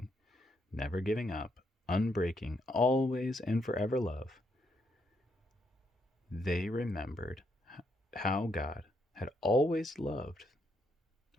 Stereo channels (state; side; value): normal; both; correlation 0.76